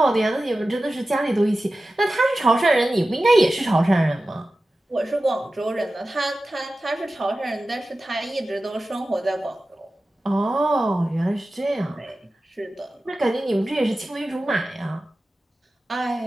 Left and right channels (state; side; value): normal; both; correlation 0.95